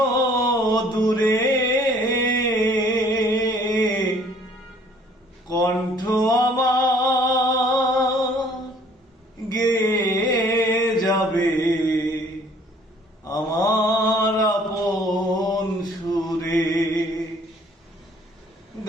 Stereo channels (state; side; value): normal; both; correlation 0.58